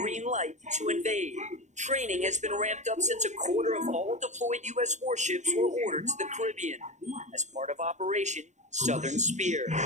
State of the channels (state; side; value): late; left; 0.34 ms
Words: light to invade. Training has been ramped up since a quarter of all deployed U.S. warships were ordered to the Caribbean as part of Operation Southern Spear.